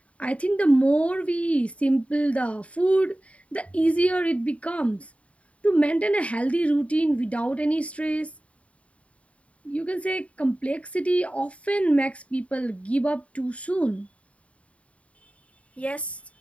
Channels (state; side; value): late; right; 0.065 ms